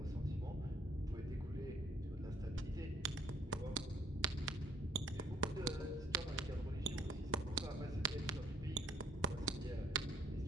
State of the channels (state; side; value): normal; both; correlation 0.64